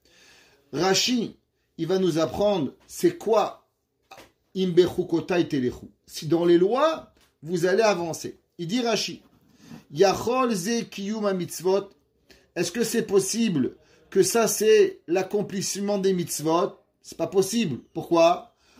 Rashi, il va nous apprendre c'est quoi imbechukotai telechu. Si dans les lois, vous allez avancer. Il dit Rashi, yachol ze kiyum mitzvot. Est-ce que c'est possible que ça c'est l'accomplissement des mitzvot? C'est pas possible. Pourquoi?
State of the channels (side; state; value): both; identical; correlation 1.00